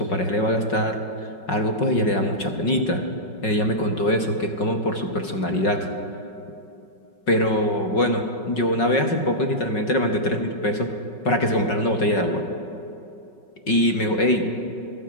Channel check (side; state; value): right; late; 5.4 ms